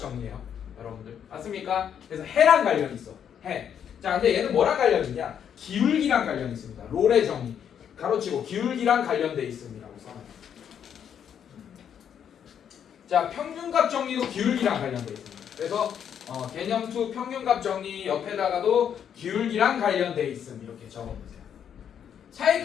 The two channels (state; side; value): quieter; right; 8.6 dB